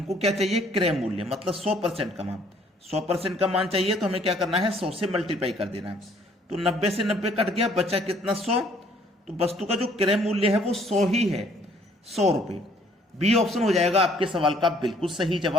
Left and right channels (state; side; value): normal; both; correlation 0.61